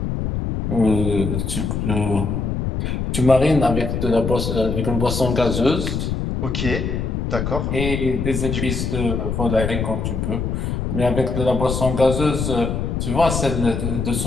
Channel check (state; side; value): noise; left; rumble, 2 dB below the sound